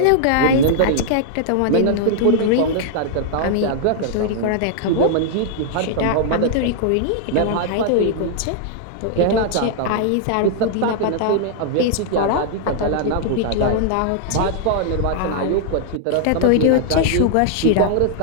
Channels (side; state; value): both; different; correlation -0.01